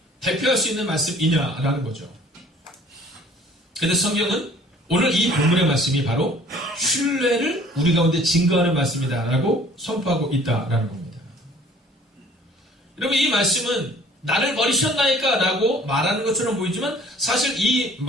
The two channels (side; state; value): both; normal; correlation 0.53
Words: 대표할 수 있는 말씀이냐라는 거죠. 그래서 성경은 오늘 이 본문의 말씀이 바로 신뢰를 우리 가운데 증거하는 말씀이다라고 선포하고 있다라는 겁니다. 여러분, 이 말씀은 나를 버리셨나이까 라고 말하는 것처럼 보이지만 사실 이